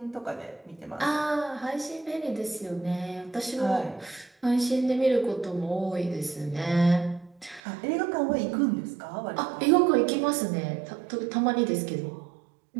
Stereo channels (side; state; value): left; drops out; at 7.6 s